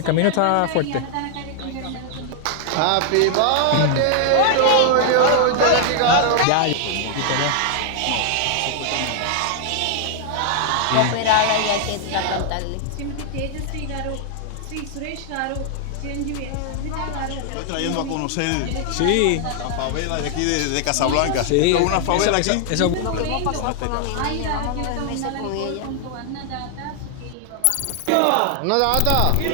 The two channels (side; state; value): both; different; correlation 0.00